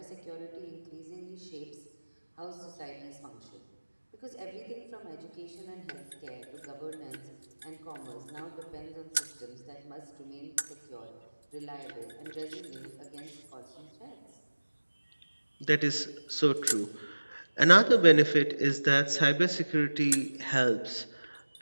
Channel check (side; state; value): both; inverted; correlation -1.00